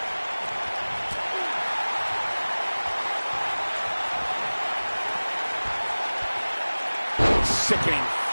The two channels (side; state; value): both; inverted; correlation -1.00